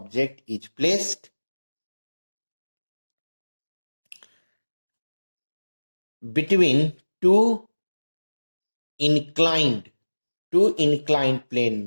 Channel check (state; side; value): inverted; both; correlation -1.00